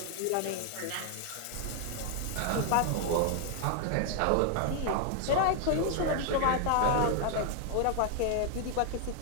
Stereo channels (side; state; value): both; different; correlation 0.00